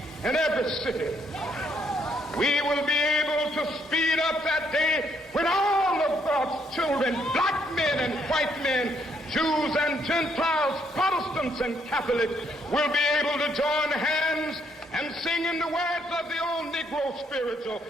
and every city, we will be able to speed up that day when all of God's children, black men and white men, Jews and Gentiles, Protestants and Catholics, will be able to join hands and sing in the words of the old Negro spiritual,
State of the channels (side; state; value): both; normal; correlation 0.71